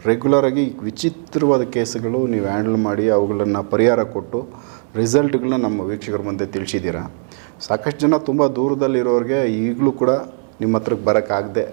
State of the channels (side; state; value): left; silent; 67 dB below the other